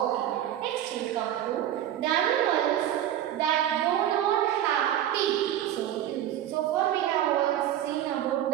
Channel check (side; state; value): left; quieter; 11.7 dB